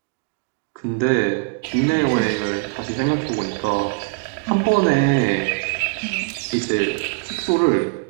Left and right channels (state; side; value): quieter; left; 33.1 dB